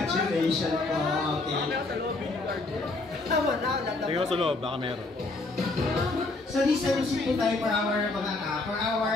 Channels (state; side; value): quieter; right; 3.2 dB